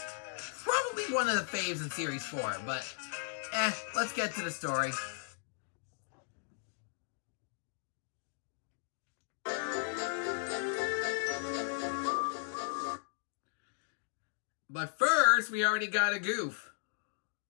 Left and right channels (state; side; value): silent; right; digital silence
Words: Probably one of the faves in Series 4, but let's get to the story. But first, we already got a goof.